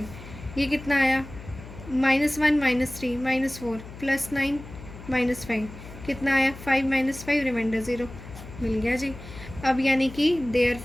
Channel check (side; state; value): left; noise; hum, 15 dB below the sound